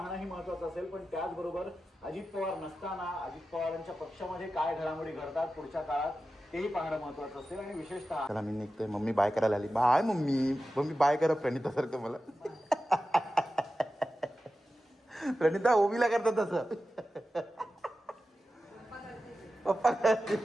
महत्वाचं असेल, पण त्याचबरोबर अजित पवार नसताना अजित पवारांच्या पक्षामध्ये काय घडामोडी घडतात पुढच्या काळात तेही पाहणं महत्वाचं असेल. आणि विशेषतः चला मी निघतोय. मम्मी बाय करायला आली. बाय मम्मी बाय करा प्रणितासारखं मला. प्रणिता ओवीला करतात तसं.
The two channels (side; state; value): both; normal; correlation 0.93